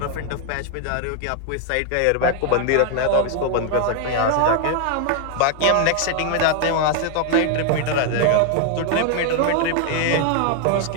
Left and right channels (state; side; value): different; both; correlation 0.00